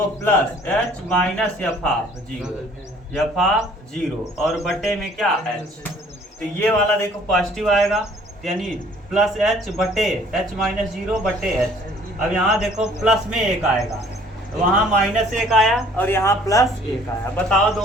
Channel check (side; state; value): both; normal; correlation 0.56